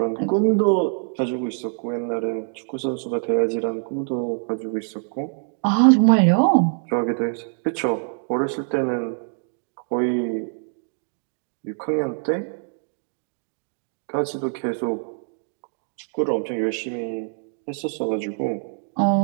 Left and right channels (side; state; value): left; silent; digital silence